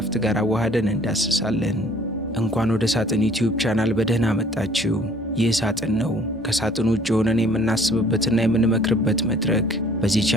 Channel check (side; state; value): both; normal; correlation 0.55